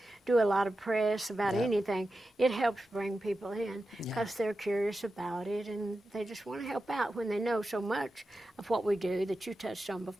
do a lot of press about anything, it helps bring people in because they're curious about it, and they just want to help out when they know so much of what we do that you touched on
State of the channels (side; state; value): both; normal; correlation 0.91